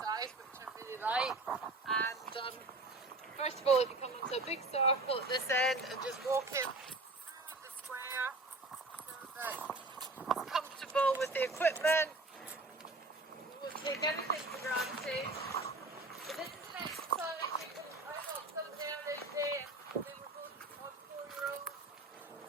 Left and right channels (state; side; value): quieter; left; 3.0 dB